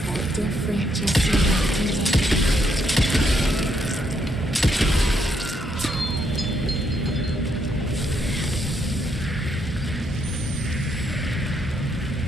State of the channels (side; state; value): both; normal; correlation 0.75